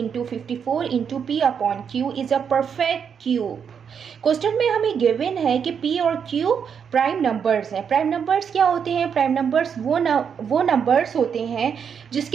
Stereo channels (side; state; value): left; quieter; 7.2 dB